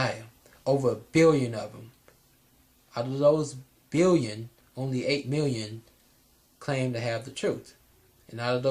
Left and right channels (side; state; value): both; identical; correlation 1.00